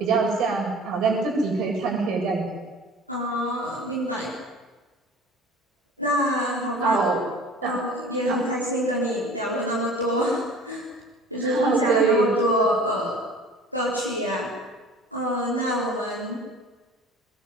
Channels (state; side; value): normal; both; correlation 0.44